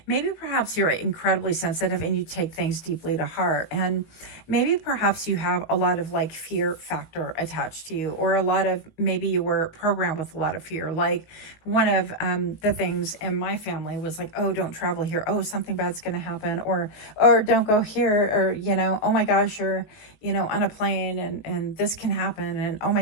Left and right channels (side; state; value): right; late; 19 ms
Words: maybe perhaps you're incredibly sensitive and you take things deeply to heart. And maybe perhaps you have a lot of like fear factor attached to you, or a lot of, maybe you were programmed with a lot of fear. Like one of the things in my family was like, oh, don't travel here. Oh, something bad's going to happen. Or don't go here. Or, you know, oh my gosh, you're, you know, on a plane and this can happen. And oh